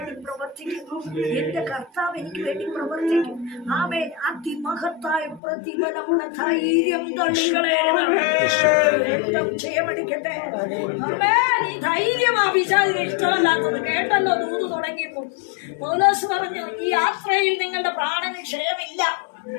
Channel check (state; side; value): drops out; right; at 5.4 s